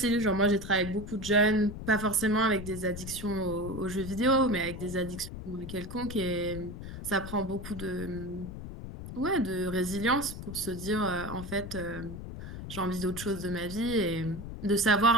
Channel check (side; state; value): left; noise; rumble, 10 dB below the sound